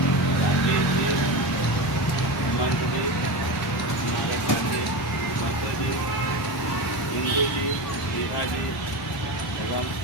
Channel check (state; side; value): normal; both; correlation 0.22